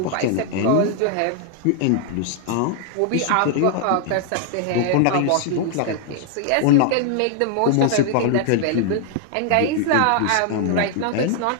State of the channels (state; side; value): different; both; correlation 0.00